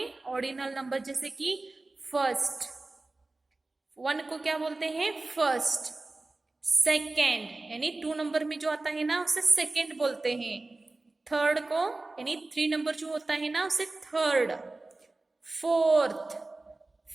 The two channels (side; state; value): left; quieter; 3.1 dB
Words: ऑर्डिनल नंबर. जैसे कि फर्स्ट 1 को क्या बोलते हैं, फर्स्ट. सेकेंड यानी 2 नंबर में जो आता है ना उसे सेकेंड बोलते हैं. थर्ड को यानी 3 नंबर जो होता है ना उसे third. Fourth,